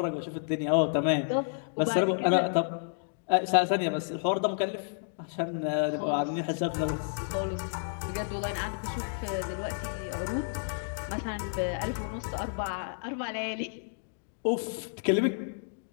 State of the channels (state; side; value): silent; right; digital silence